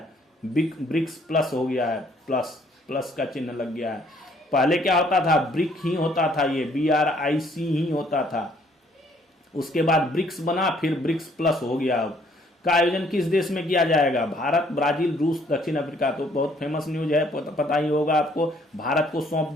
ब्रिक्स प्लस हो गया है, प्लस का चिन्ह लग गया है। पहले क्या होता था? ब्रिक ही होता था, ये BRIC ही होता था। उसके बाद ब्रिक्स बना, फिर ब्रिक्स प्लस हो गया। अब का आयोजन किस देश में किया जाएगा? भारत, ब्राजील, रूस, दक्षिण अफ्रीका। तो बहुत फेमस न्यूज है, पता ही होगा आपको। भारत को सौंप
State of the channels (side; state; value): both; normal; correlation 0.63